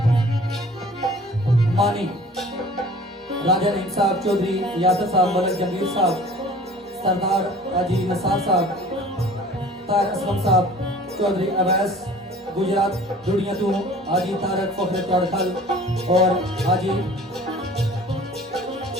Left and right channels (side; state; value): both; normal; correlation 0.46